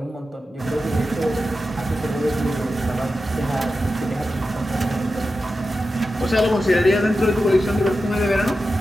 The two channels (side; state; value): both; normal; correlation 0.91